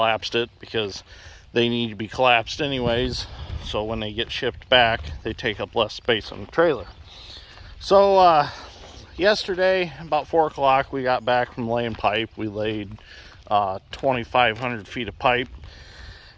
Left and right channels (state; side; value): identical; both; correlation 1.00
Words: it because they need to be collapsed anyways, so when they get shipped back they take up less space on the trailer. So yesterday about 4 o'clock we got back from laying pipe. We laid 2,500 feet of pipe